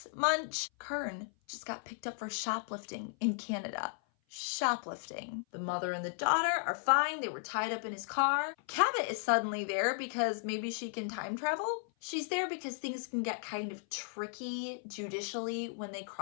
Munch. Kern just got picked up for shoplifting in Canada. Shoplifting. The mother and the daughter are fine. They were tied up in his car. Cabot is suddenly there because maybe she can time travel. She's there because things can get kind of tricky judicially when they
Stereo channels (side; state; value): right; silent; 54 dB below the other